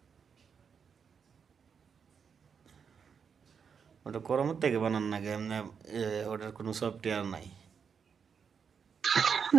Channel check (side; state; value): left; quieter; 6.5 dB